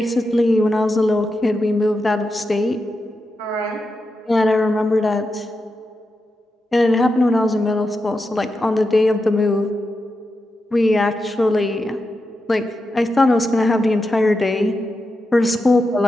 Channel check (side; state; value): both; normal; correlation 0.88